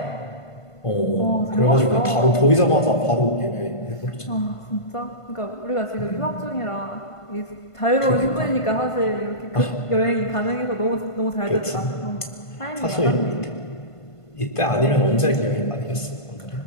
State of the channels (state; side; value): late; right; 1.5 ms